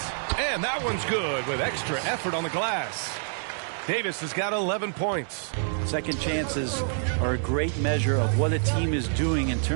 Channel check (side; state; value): left; silent; digital silence